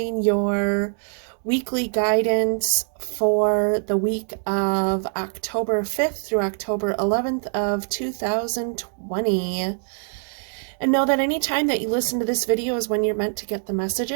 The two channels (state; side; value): silent; left; 63 dB below the other